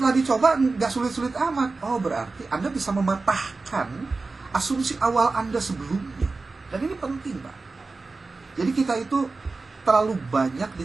dicoba nggak sulit-sulit amat. Berarti Anda bisa mematahkan asumsi awal Anda sebelumnya. Dan ini penting, Pak. Jadi kita itu terlalu banyak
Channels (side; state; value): left; quieter; 3.8 dB